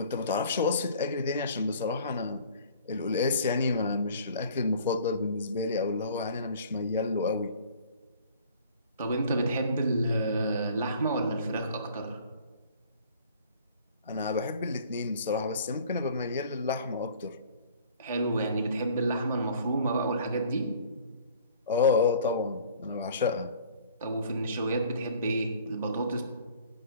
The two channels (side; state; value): both; inverted; correlation -0.51